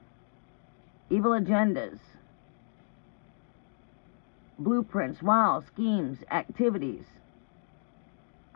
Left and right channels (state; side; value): silent; right; digital silence